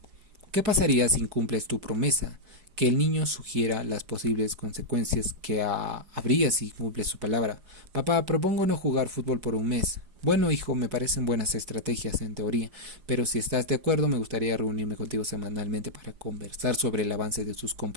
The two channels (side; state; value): left; late; 5.0 ms